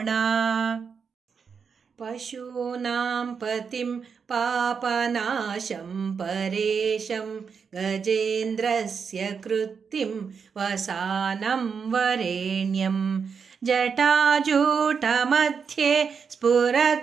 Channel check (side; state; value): left; quieter; 6.1 dB